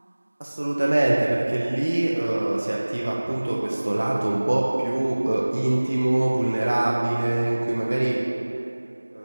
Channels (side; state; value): both; inverted; correlation -1.00